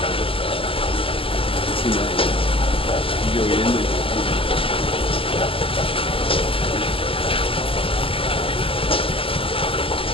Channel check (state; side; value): late; right; 0.26 ms